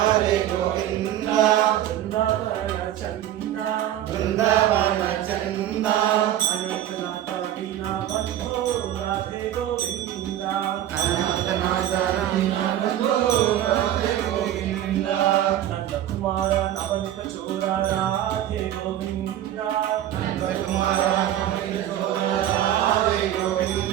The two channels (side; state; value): left; quieter; 12.1 dB